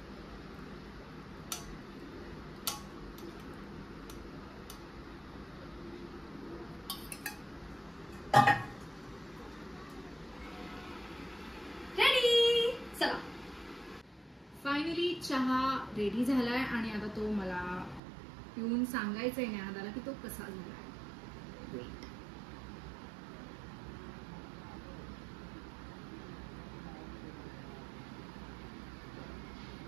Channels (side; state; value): left; drops out; at 18.0 s